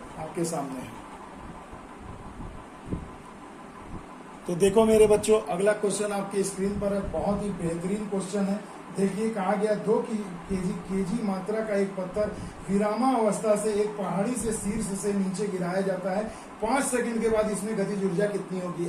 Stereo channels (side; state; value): both; identical; correlation 1.00